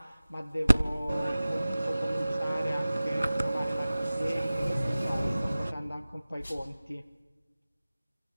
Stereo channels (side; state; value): both; inverted; correlation -0.97